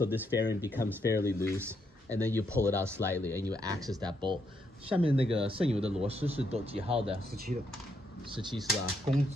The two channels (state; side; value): normal; both; correlation 0.77